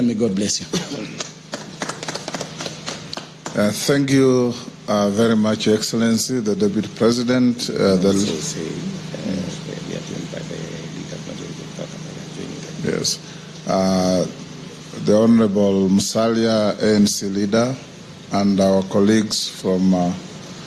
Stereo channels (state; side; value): identical; both; correlation 1.00